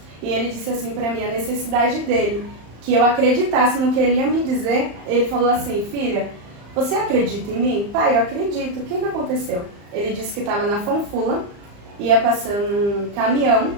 E ele disse assim para mim a necessidade dele, que eu acreditasse no que ele ia me dizer. Ele falou assim: filha, você acredita em mim? Pai, eu acredito. O que aconteceu? Ele disse que estava na Fanfula, ia passando um caminhão,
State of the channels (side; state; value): left; late; 35 ms